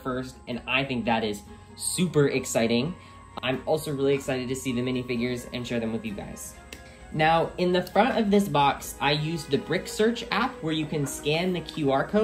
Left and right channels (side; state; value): both; identical; correlation 1.00